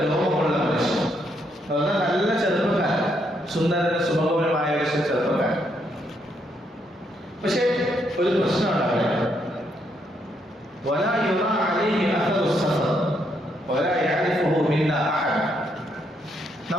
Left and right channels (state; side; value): normal; both; correlation 0.75